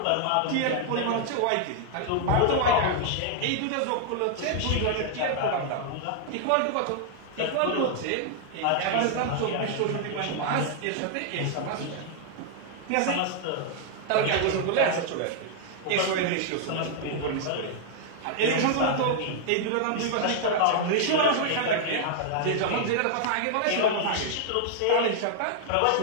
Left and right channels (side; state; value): both; different; correlation 0.00